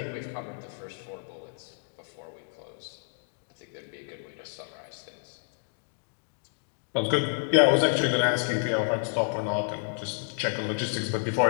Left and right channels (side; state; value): right; silent; digital silence